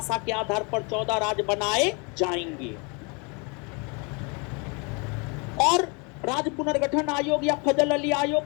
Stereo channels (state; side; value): quieter; right; 32.0 dB